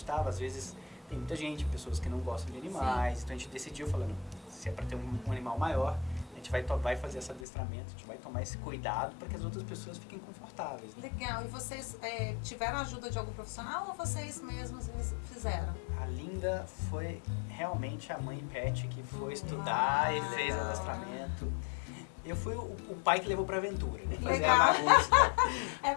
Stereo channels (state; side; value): drops out; right; at 7.5 s